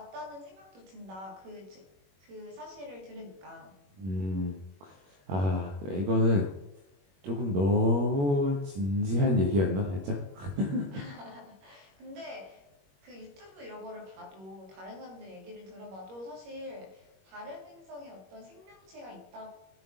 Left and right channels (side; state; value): left; late; 21 ms